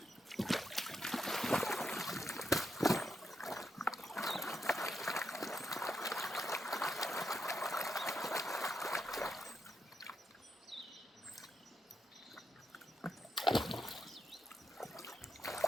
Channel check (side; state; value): both; normal; correlation 0.83